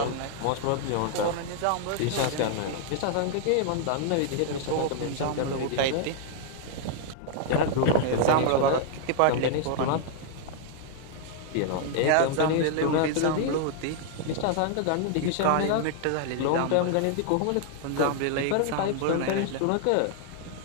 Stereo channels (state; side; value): different; both; correlation 0.00